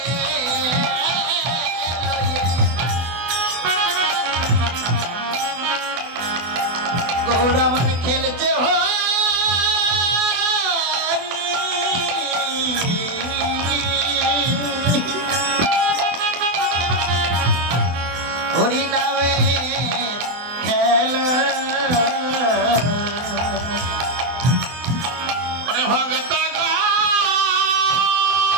গৌর আমার খেলছে হরি নামে খেলা মানে ভগত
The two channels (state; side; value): late; left; 24 ms